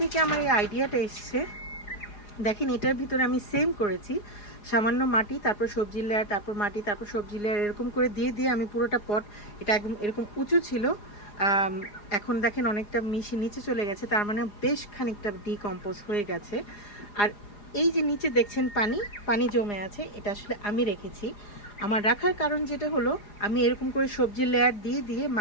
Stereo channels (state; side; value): late; right; 4.9 ms